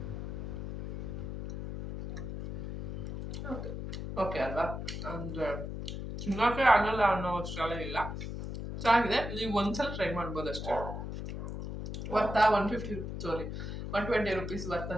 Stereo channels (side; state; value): left; noise; hum, 6 dB below the sound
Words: ಓಕೆ ಅಲ್ವಾ, ಅಂದರೆ ತಿನ್ನೋಕೆ ಆಗಲ್ಲ ಅನ್ನೋ ಅಷ್ಟೆಲ್ಲ ಇಲ್ಲ, ಚೆನ್ನಾಗಿದೆ. ನೀವು ಒಂದ್ಸಲ ಟ್ರೈ ಮಾಡ್ಬೋದು ಅಷ್ಟೇ. ವರ್ತಾ 120 ರೂಪೀಸ್ ವರ್ತ್